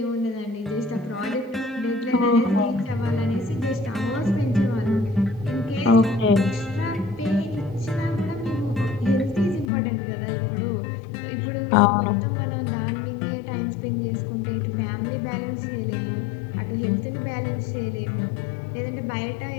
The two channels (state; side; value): drops out; right; at 9.7 s